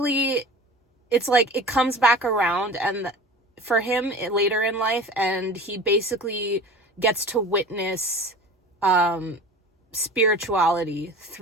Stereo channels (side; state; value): both; normal; correlation 0.37